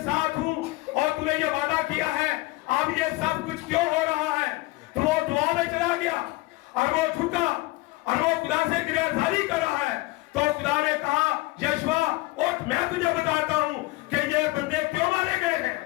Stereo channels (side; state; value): right; quieter; 21.6 dB